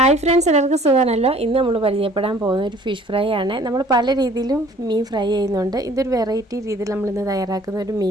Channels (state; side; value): normal; both; correlation 0.54